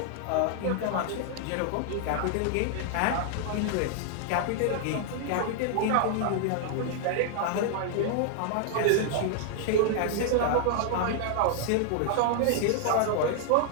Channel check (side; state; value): both; different; correlation -0.01